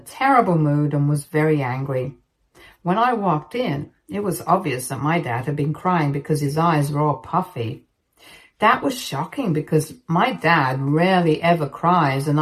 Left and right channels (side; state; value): both; identical; correlation 1.00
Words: terrible mood and was very angry. When I walked in, it was obvious that my dad had been crying because his eyes were all puffy. That was shocking because my dad rarely ever cries, and